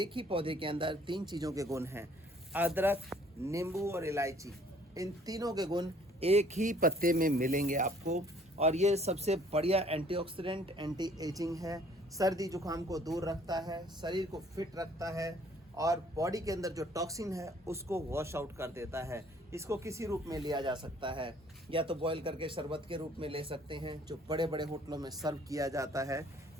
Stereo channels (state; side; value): normal; both; correlation 0.58